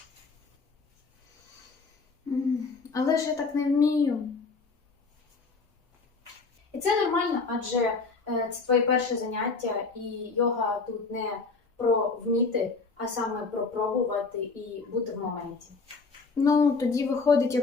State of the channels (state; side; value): quieter; right; 4.3 dB